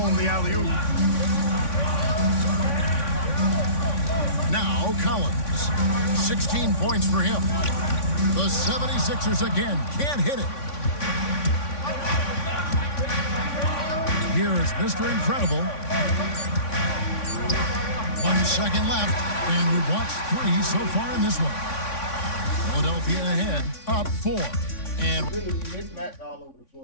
the alley-oop. Now Collins, 16 points for him. The 76ers again can't hit it. Here is Mr. Incredible. 1 second left, and we've watched 3 so far in this one. Philadelphia ahead, up 4. And Really, mismatch all over the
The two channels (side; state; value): right; late; 3.5 ms